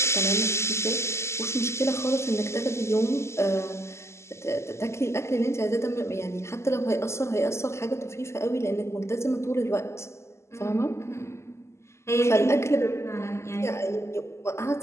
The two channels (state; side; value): late; right; 0.13 ms